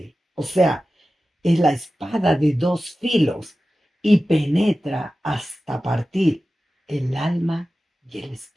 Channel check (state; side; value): normal; both; correlation 0.95